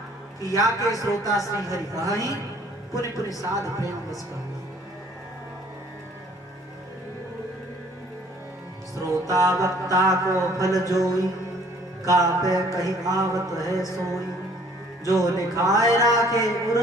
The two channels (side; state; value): both; normal; correlation 0.57